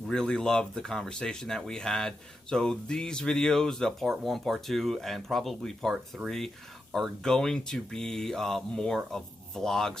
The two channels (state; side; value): normal; both; correlation 0.87